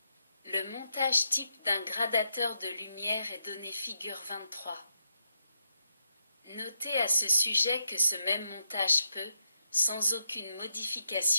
Le montage type d'un gradateur de lumière est donné figure 23. Notez à ce sujet que ce même montage peut, sans aucune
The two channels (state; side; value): inverted; both; correlation -0.82